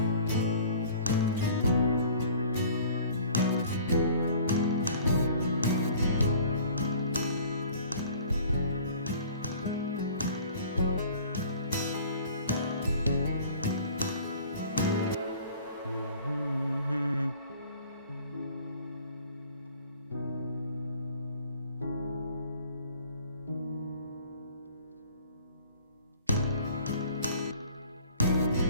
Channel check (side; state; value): both; inverted; correlation -0.50